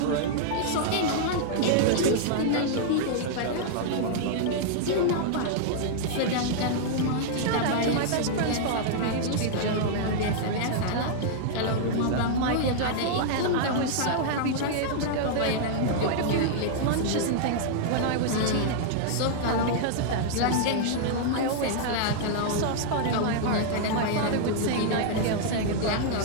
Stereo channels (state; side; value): different; both; correlation -0.01